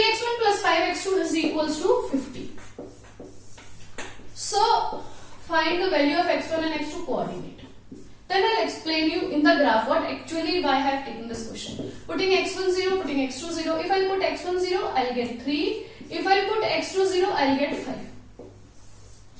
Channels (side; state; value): both; identical; correlation 1.00